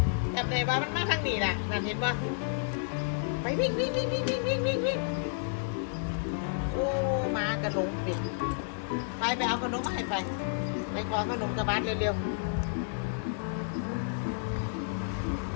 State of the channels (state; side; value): silent; right; digital silence